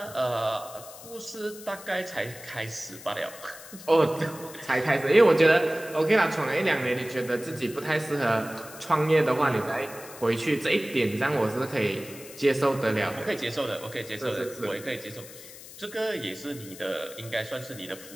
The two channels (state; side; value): noise; left; hiss, 16 dB below the sound